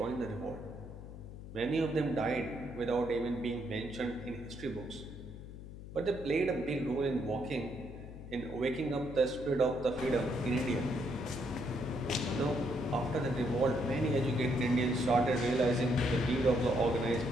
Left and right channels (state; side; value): noise; left; hum, 12 dB below the sound